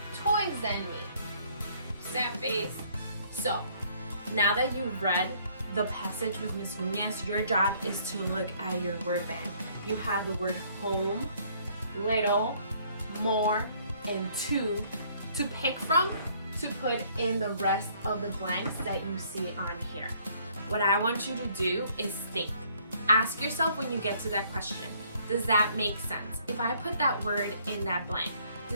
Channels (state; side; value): inverted; both; correlation -0.63